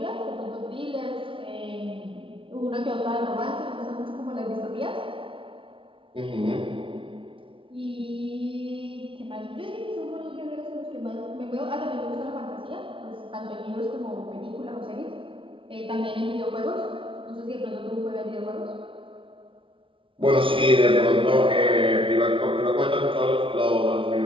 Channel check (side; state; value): left; late; 0.25 ms